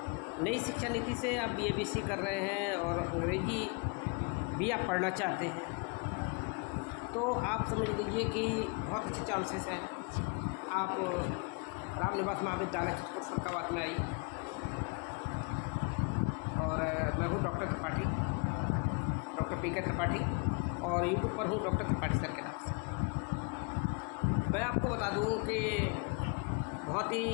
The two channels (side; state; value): right; quieter; 32.4 dB